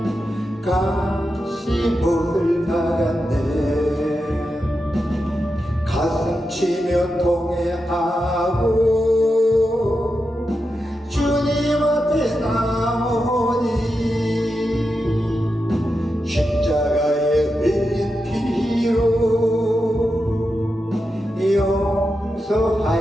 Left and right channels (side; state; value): both; normal; correlation 0.88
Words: 가시못을 나갔네. 가슴 치며 통회하고 주님 앞에 나오니 십자가에 흘린 피로